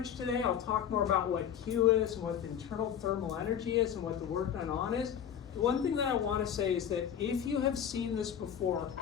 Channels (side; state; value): right; quieter; 8.9 dB